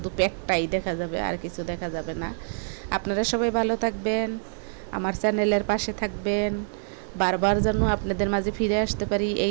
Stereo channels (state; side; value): silent; left; digital silence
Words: পেটটাই দেখা যাবে, আর কিছু দেখা যাবে না। আপনারা সবাই ভালো থাকবেন, আমার চ্যানেলের পাশে থাকবেন, বারবার যেন আপনাদের মাঝে ফিরে আসতে পারি